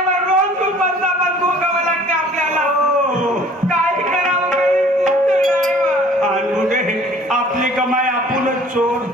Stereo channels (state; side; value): normal; both; correlation 0.52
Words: रोज दुपारचा भोगावं लागते आपल्याला. काय करावं आणि पुढे आपली कमाई आपणच चोर.